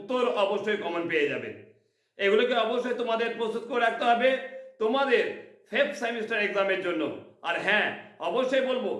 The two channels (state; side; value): identical; both; correlation 1.00